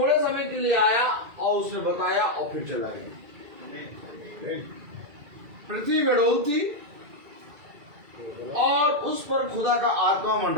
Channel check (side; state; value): left; late; 2.3 ms